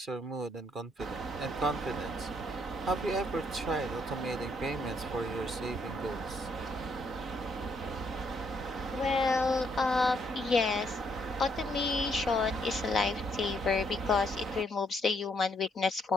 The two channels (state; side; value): normal; both; correlation 0.72